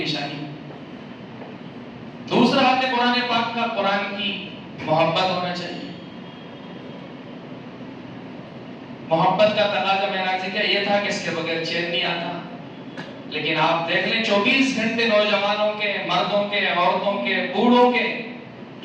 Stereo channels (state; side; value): identical; both; correlation 1.00